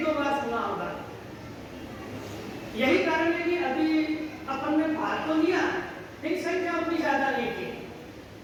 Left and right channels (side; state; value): both; identical; correlation 1.00